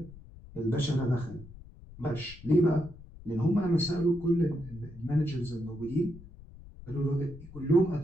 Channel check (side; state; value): left; noise; rumble, 17 dB below the sound